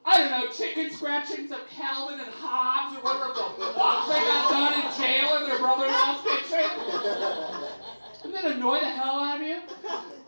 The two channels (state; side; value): inverted; both; correlation -1.00